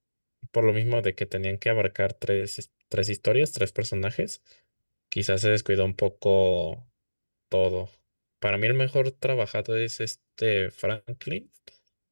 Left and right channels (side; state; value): both; inverted; correlation -1.00